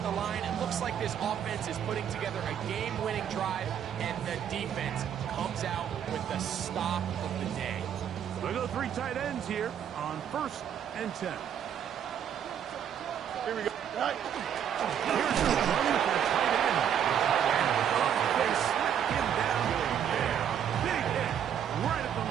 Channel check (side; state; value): left; quieter; 9.0 dB